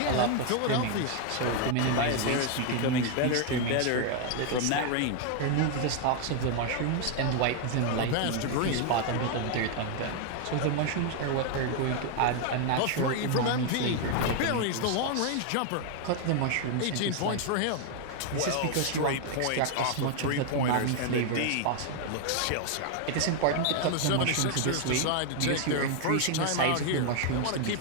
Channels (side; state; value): both; different; correlation 0.00